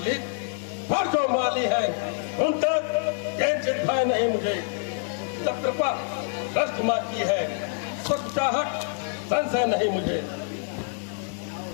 पर जो माली है उन तक किंचित भय नहीं मुझे। जब कृपा दृष्ट माँ की है तो चाहत संशय नहीं मुझे।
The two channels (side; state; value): right; silent; digital silence